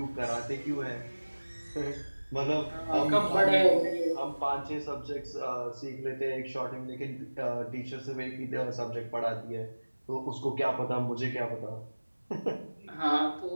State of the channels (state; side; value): inverted; both; correlation -1.00